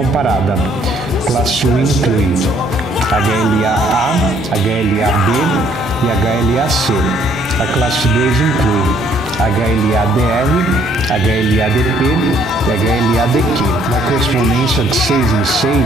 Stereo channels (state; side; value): normal; both; correlation 0.64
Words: Classe 1 inclui HLA-A, HLA-B e HLA-C. A classe 2 inclui HLA-DR, HLA-DP e HLA-DQ. Na correspondência de 6 em